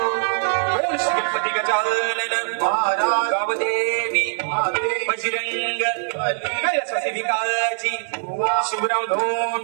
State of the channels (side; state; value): left; silent; digital silence